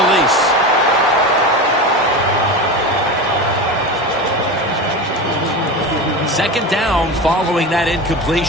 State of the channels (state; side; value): normal; both; correlation 0.25